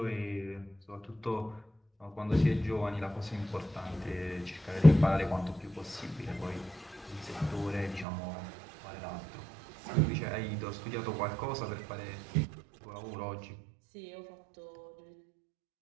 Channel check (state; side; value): drops out; left; at 8.1 s